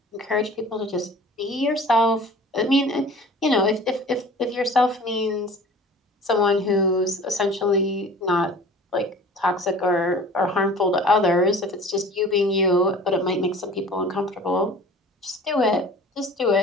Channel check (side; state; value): both; normal; correlation 0.44